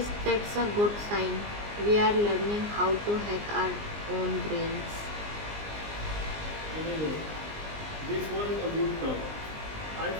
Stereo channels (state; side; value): late; left; 19 ms